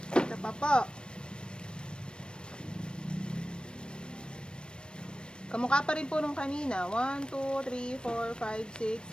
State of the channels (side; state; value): right; late; 0.054 ms